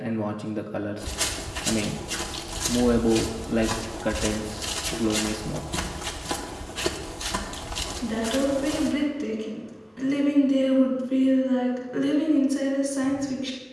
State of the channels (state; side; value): identical; both; correlation 1.00